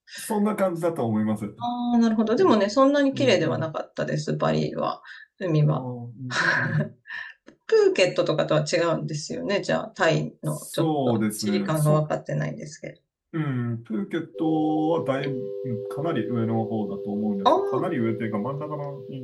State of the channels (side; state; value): both; identical; correlation 1.00